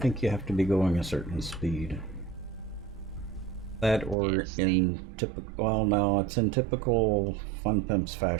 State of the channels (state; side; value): drops out; left; at 4.2 s